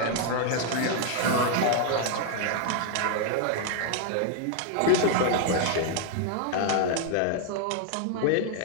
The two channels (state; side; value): different; both; correlation 0.00